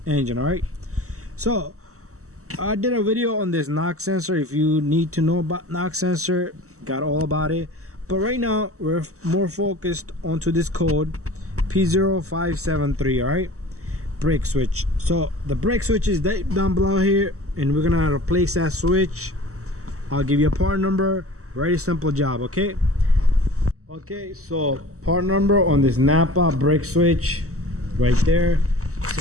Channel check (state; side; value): late; left; 0.65 ms